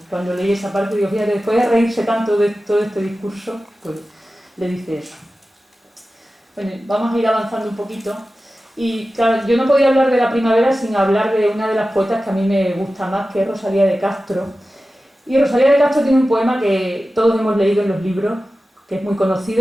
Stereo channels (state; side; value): normal; both; correlation 0.94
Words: leí esa parte, digo, fíjate, después de reírse tanto de todo este discurso, pues le dice eso. Bueno, vamos a ir avanzando un poquito. Y claro, yo no podía hablar de la primavera sin hablar de una de las poetas que a mí me gusta más, que es Rosalía de Castro. Y Rosalía de Castro tiene un poema que todos hemos leído en los libros, que es muy